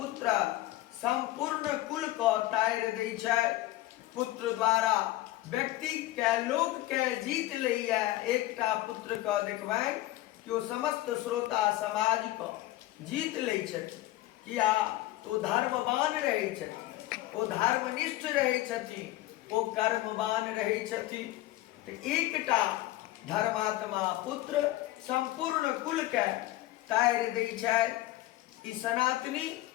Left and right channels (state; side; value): quieter; right; 16.5 dB